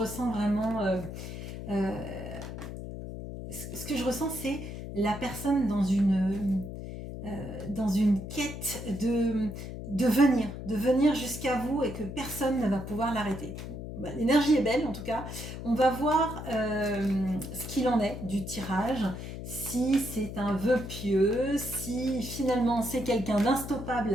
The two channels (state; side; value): noise; left; hum, 8 dB below the sound